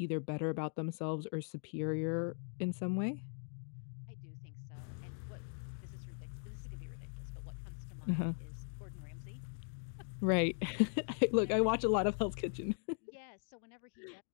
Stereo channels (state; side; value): silent; right; 51 dB below the other